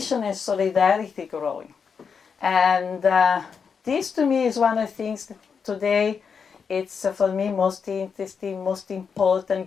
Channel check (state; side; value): quieter; right; 6.1 dB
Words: and solidarity growing. And this to me is one of the things that today it's for me most interesting, most